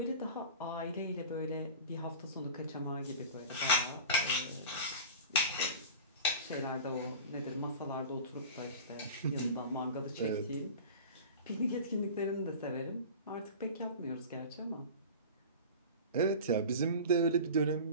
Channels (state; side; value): inverted; both; correlation -0.35